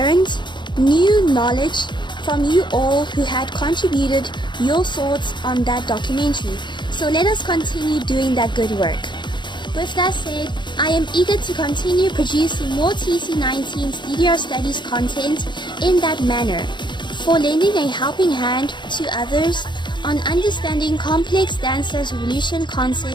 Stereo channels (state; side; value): late; right; 0.22 ms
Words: new knowledge from you all who had contributed your thoughts on that documentary. So let us continue doing that good work. With that said, I am eager to continue producing more TC19's DDR Studies content in that manner, for lending a helping hand to others on understanding complex Dance Dance Revolution